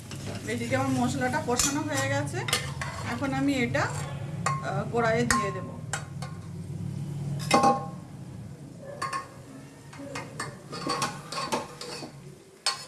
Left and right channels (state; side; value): identical; both; correlation 1.00